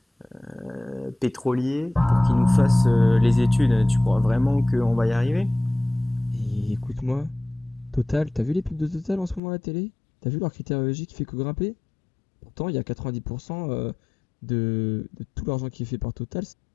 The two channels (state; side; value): drops out; right; at 9.4 s